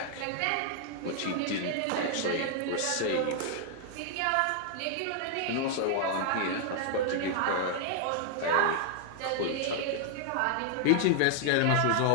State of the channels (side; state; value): both; different; correlation 0.00